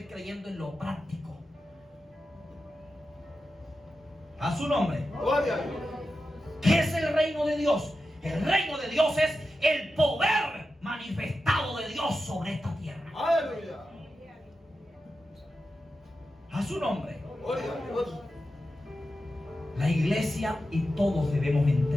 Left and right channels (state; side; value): normal; both; correlation 0.91